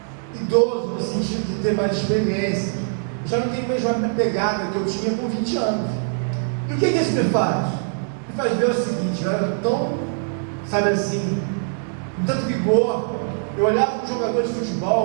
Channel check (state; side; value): silent; left; digital silence